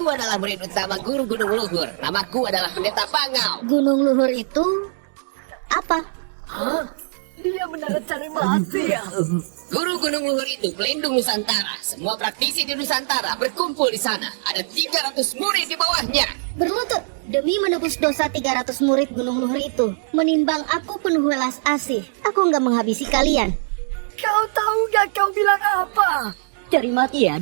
adalah murid utama guru Gunung Luhur. Namaku adalah Pendeta Pangau. Gunung Luhur itu apa? Dia benar cari mati ya. Guru Gunung Luhur itu pelindung Nusantara. Semua praktisi di Nusantara berkumpul di sana. Ada 300 murid di bawahnya. Berlutut demi menebus dosa 300 murid Gunung Luhur itu. Menimbang aku penuh welas asih, aku nggak menghabisi kalian. Kau tahu gak kau bilang apa? Cari mati ya,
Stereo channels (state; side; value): silent; left; digital silence